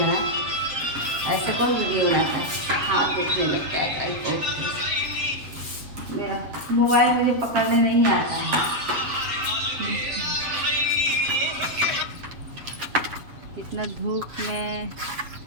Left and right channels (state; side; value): late; left; 7.6 ms